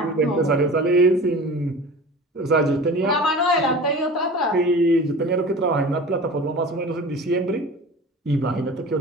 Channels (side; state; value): both; normal; correlation 0.38